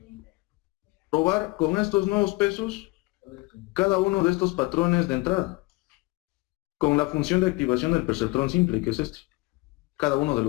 probar con estos nuevos pesos cada uno de estos patrones de entrada, con la función de activación del perceptrón simple, que es este, cada uno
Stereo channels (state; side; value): quieter; right; 24.2 dB